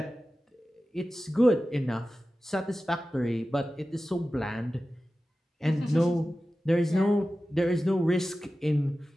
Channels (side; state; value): both; normal; correlation 0.95